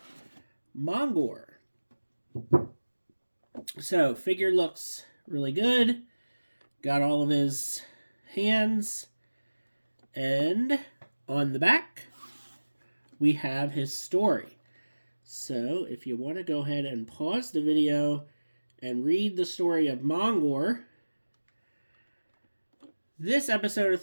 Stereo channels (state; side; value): inverted; both; correlation -1.00